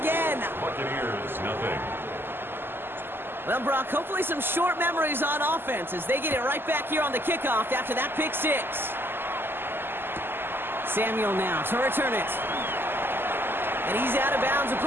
Buccaneers, nothing. Well, Brock, hopefully some short memories on offense as they get it right back here on the kickoff after that pick 6. Samuel now to return it. And he's out of bounds,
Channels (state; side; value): late; left; 0.10 ms